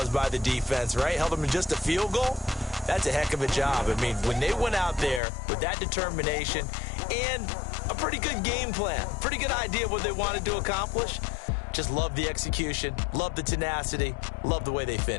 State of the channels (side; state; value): right; drops out; at 5.2 s